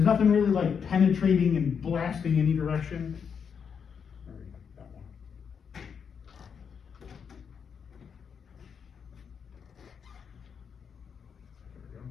nothing really like penetrating and blasting any direction. That one.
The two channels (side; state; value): right; quieter; 6.8 dB